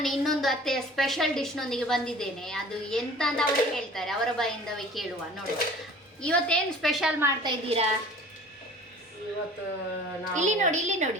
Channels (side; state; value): both; normal; correlation 0.46